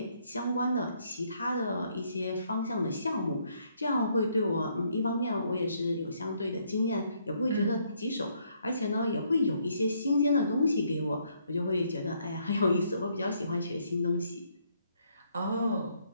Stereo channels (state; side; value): inverted; both; correlation -0.71